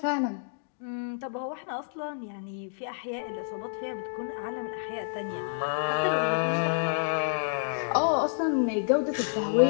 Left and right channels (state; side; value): silent; right; digital silence